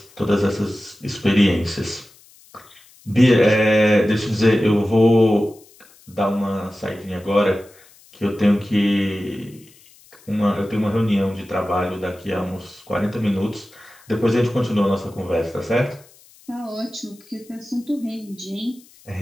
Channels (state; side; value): noise; left; hiss, 27 dB below the sound